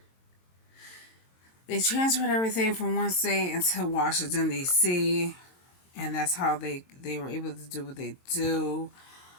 They transferred everything from one state into Washington, D.C., and that's how they were able to do what they do.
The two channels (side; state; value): right; late; 22 ms